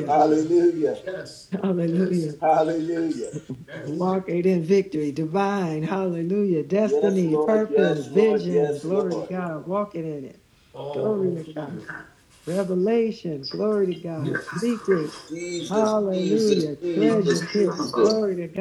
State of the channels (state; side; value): identical; both; correlation 1.00